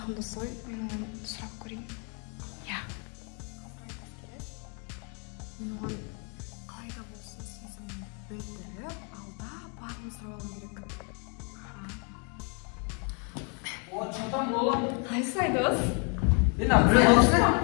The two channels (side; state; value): right; quieter; 37.6 dB